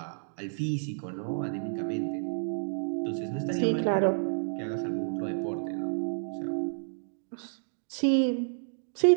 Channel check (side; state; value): left; silent; digital silence